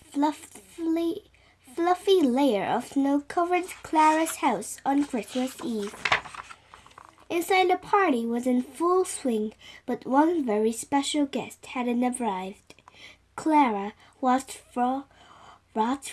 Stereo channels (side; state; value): both; identical; correlation 1.00